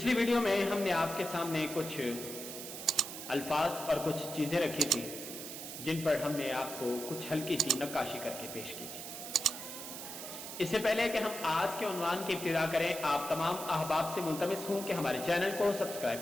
ویڈیو میں ہم نے آپ کے سامنے کچھ الفاظ اور کچھ چیزیں رکھی تھی جن پر ہم نے آپ کو کچھ ہلکی سی نقاشی کر کے پیش کی تھی۔ اس سے پہلے کہ ہم آج کے عنوان کی ابتدا کریں، آپ تمام احباب سے ملتمس ہوں کہ ہمارے چینل کو سبسکرائب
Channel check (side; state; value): right; noise; hiss, 9 dB below the sound